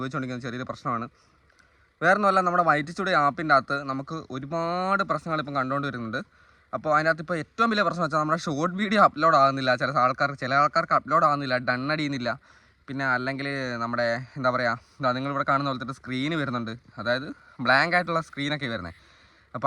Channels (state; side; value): identical; both; correlation 1.00